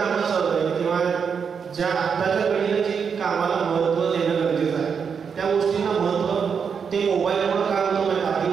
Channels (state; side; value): quieter; left; 6.4 dB